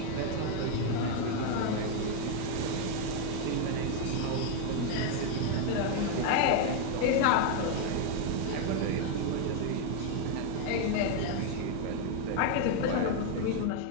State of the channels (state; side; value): different; both; correlation 0.01